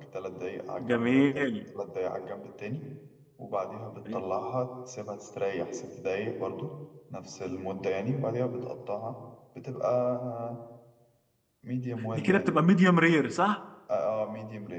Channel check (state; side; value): identical; both; correlation 1.00